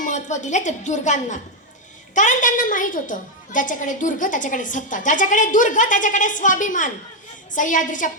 दिले ते दुर्गांना, कारण त्यांना माहित होतं ज्याच्याकडे दुर्ग त्याच्याकडे सत्ता, ज्याच्याकडे दुर्ग त्याच्याकडे स्वाभिमान। सह्याद्रीच्या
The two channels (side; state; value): both; normal; correlation 0.02